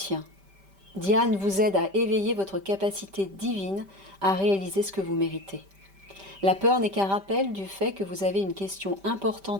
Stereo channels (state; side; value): late; left; 5.1 ms